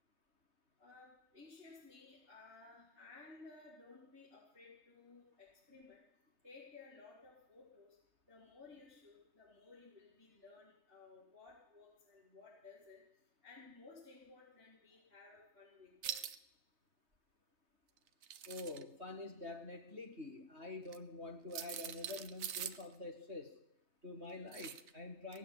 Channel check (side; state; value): left; late; 3.3 ms